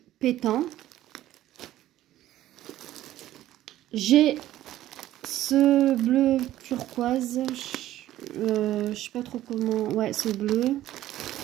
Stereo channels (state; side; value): quieter; left; 13.9 dB